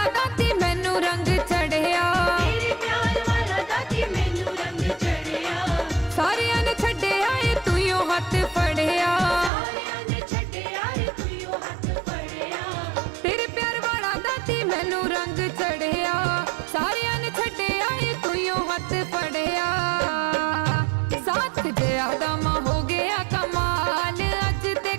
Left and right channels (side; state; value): left; drops out; at 9.5 s